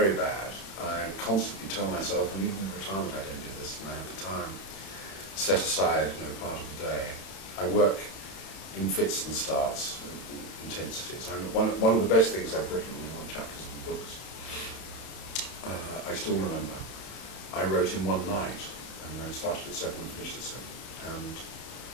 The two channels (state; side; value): late; right; 31 ms